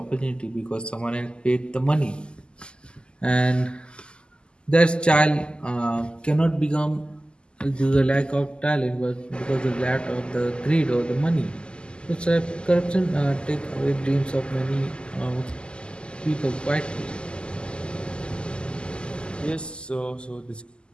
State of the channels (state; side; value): late; right; 0.050 ms